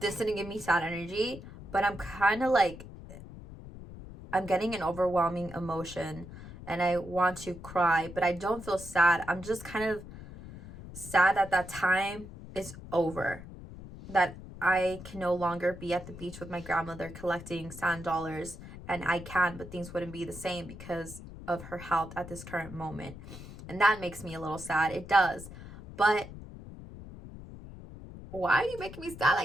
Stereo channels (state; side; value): noise; left; rumble, 14 dB below the sound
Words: didn't give me sad energy, but I'm kind of like, I'm getting an overwhelming emotion and I want to cry, but I don't feel sad. I'm just kind of sad that that time is over, that I can no longer be at the beach with my grandmother collecting sand dollars, and I can, but things wouldn't be the same because of her health at this current moment. And that makes me a little sad. It does. But why are you making me sad